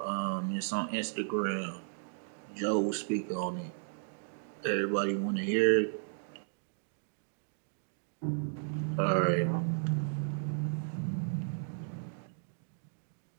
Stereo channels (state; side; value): silent; left; digital silence